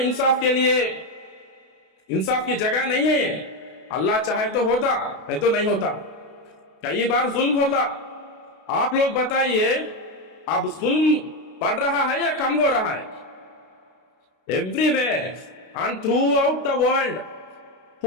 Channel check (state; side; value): late; right; 32 ms